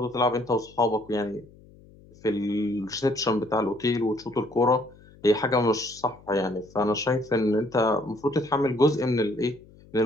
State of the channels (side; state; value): left; noise; hum, 24 dB below the sound